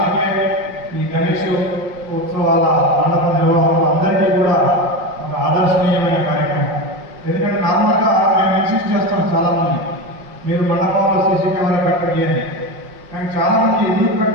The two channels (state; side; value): late; left; 5.5 ms